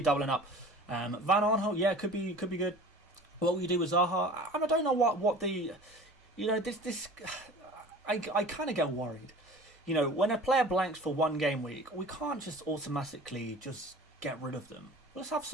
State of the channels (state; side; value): normal; both; correlation 0.42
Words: doubling up. Van Aanholt, yeah, could be good. What will you do with Zaha? I don't know what the... this... I kind of get worried. When a player blanks for one game week, we can't just automatically just get rid of them. Let's have